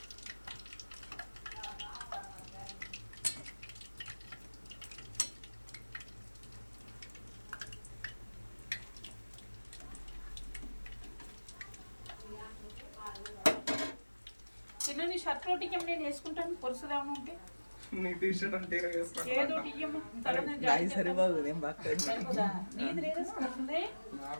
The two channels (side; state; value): both; inverted; correlation -1.00